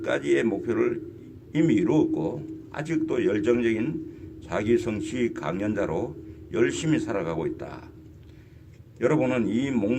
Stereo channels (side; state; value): both; identical; correlation 1.00